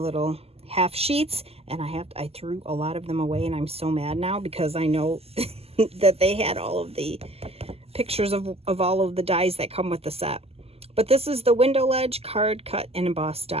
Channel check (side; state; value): left; late; 0.29 ms